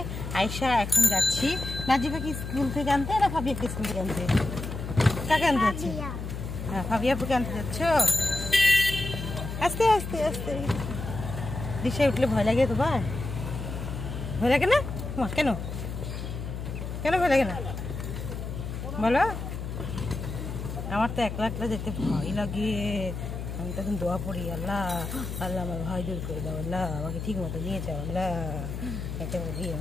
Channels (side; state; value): left; noise; hum, 6 dB below the sound